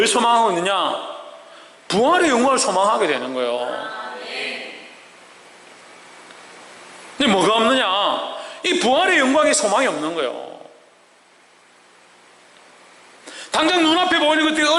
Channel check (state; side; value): identical; both; correlation 1.00